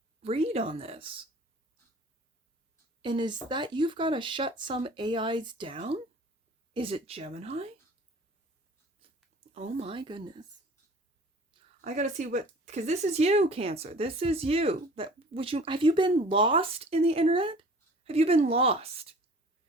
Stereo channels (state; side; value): normal; both; correlation 0.46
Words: read on this. And is that you've got to shut some AIs down? Is it Gemini? Oh my goodness. I got to see what, because this is you, Cancer. This is you. Have you been lost in the internet? Have you been lost?